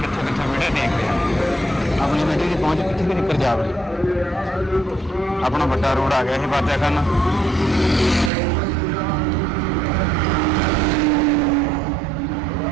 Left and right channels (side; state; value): left; drops out; at 8.3 s